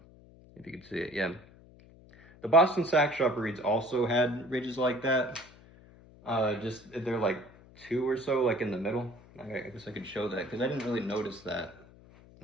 If you can see it, yeah. The Boston Sax Shop reeds also had ridges like that. Just they're like two or so, like in the middle. I guess I could show that because I didn't really notice that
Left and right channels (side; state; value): left; noise; hum, 23 dB below the sound